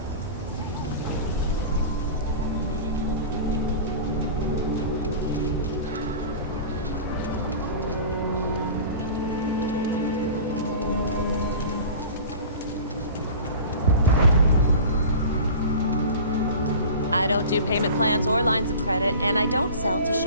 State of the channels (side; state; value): both; inverted; correlation -0.37